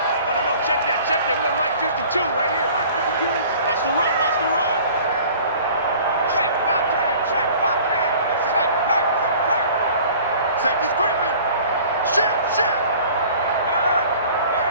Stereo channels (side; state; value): both; inverted; correlation -0.48